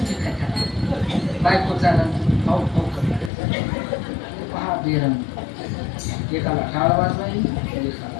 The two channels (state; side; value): drops out; right; at 3.3 s